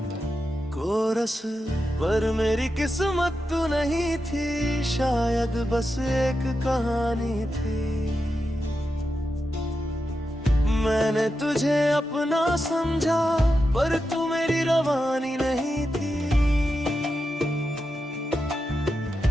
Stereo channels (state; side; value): normal; both; correlation 0.88